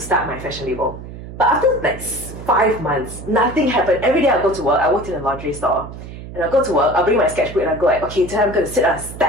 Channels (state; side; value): noise; right; hum, 12 dB below the sound